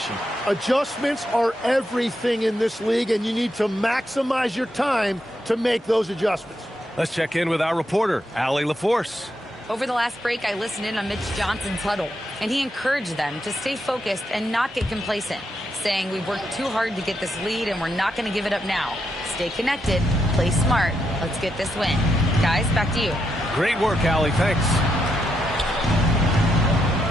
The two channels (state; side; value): normal; both; correlation 0.82